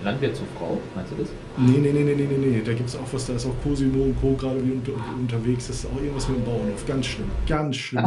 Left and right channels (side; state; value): both; identical; correlation 1.00